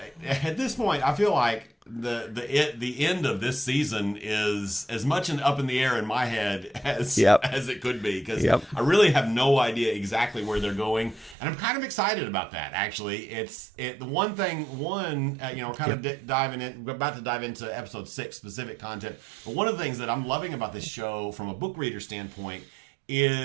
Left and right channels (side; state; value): left; drops out; at 11.4 s